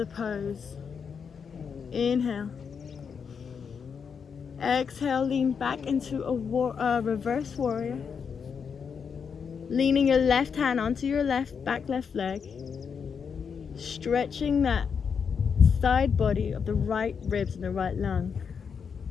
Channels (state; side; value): quieter; right; 6.4 dB